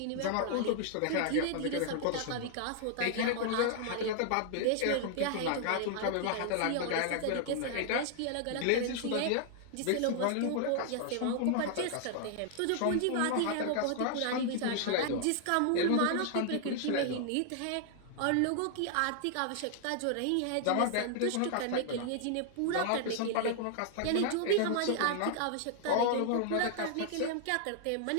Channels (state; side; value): different; both; correlation 0.00